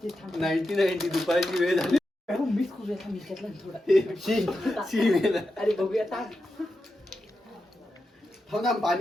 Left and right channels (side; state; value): both; normal; correlation 0.89